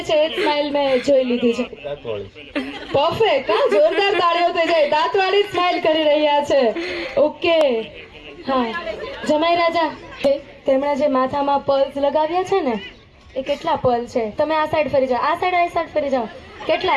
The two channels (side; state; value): both; identical; correlation 1.00